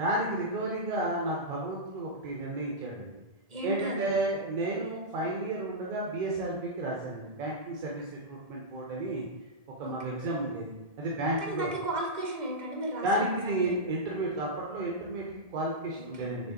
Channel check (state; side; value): late; left; 1.7 ms